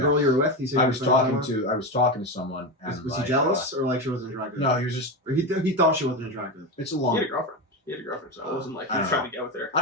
girl you were with? He said I you was were friends talking with to someone and Was he like, jealous or like she wasn't attractive? no, he was just Or he thought she wasn't attractive. it's a He long had a girlfriend. So it wasn't like he I was don't trying to get with her. I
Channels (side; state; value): both; normal; correlation 0.17